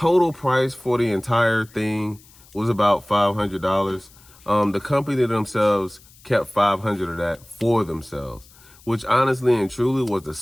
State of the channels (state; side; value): noise; left; hiss, 26 dB below the sound